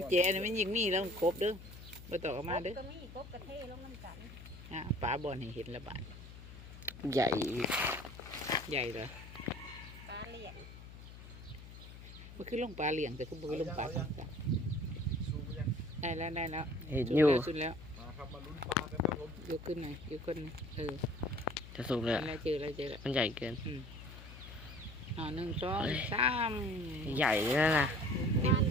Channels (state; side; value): noise; left; hum, 15 dB below the sound